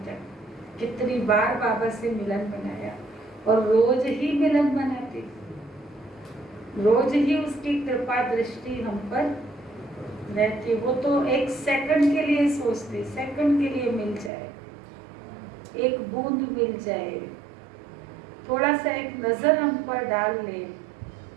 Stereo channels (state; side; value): drops out; left; at 14.3 s